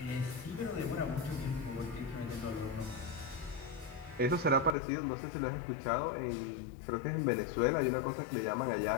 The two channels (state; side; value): drops out; right; at 4.8 s